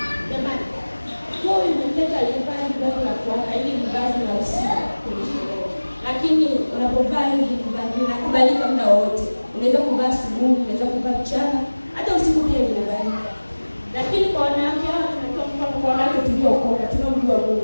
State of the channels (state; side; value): inverted; both; correlation -1.00